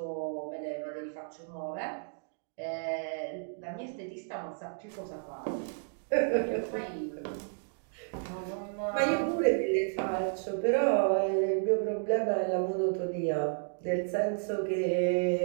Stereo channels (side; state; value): left; silent; digital silence